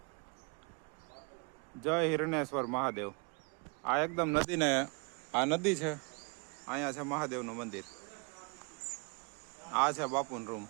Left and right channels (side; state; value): left; quieter; 33.4 dB